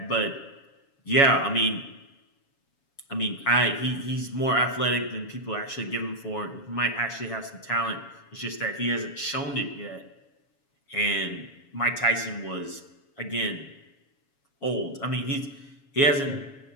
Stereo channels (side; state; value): right; late; 7.2 ms